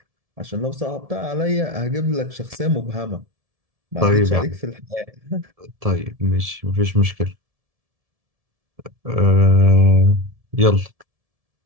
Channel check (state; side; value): late; left; 1.7 ms